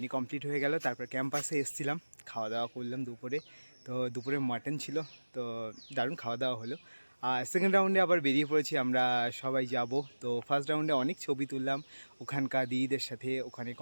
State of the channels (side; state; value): both; inverted; correlation -1.00